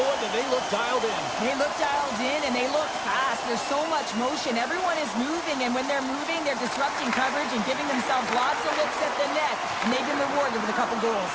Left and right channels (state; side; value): identical; both; correlation 1.00